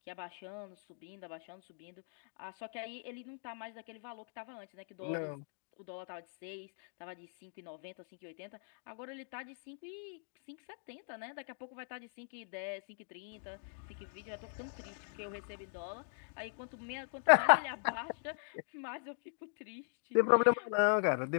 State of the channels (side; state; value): right; silent; digital silence